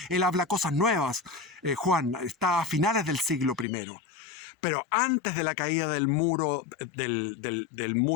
Él habla cosas nuevas. Juan está a finales del siglo I. Pero antes de la caída del muro del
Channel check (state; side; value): drops out; right; at 3.7 s